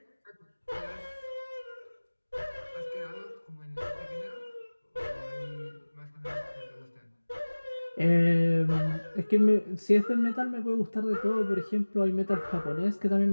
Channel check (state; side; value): inverted; both; correlation -1.00